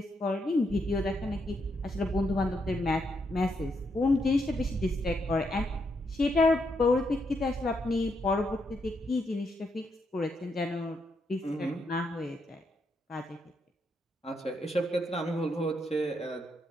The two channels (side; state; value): both; normal; correlation 0.79